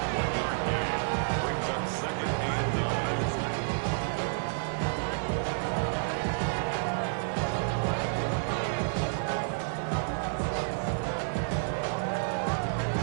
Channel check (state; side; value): silent; left; 58 dB below the other